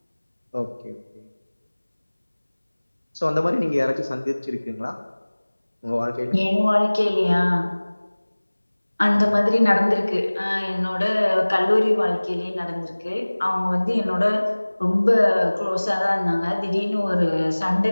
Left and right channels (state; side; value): inverted; both; correlation -1.00